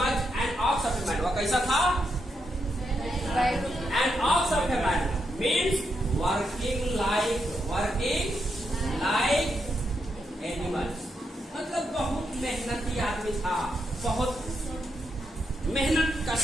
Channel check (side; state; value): both; normal; correlation 0.82